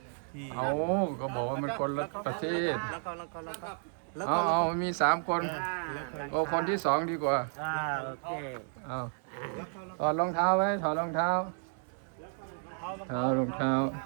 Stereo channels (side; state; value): left; silent; 56 dB below the other